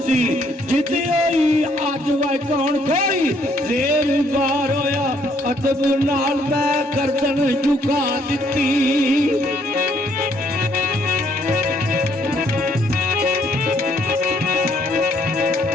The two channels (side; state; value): both; normal; correlation 0.67